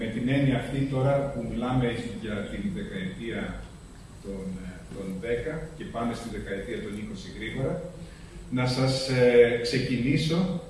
με την έννοια αυτή τώρα που μιλάμε για την δεκαετία των 10 και πάμε στη δεκαετία των 20 γρήγορα, να σας ξεκινήσω.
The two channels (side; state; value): both; identical; correlation 1.00